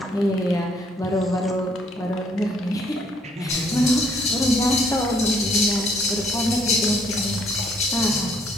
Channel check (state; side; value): normal; both; correlation 0.65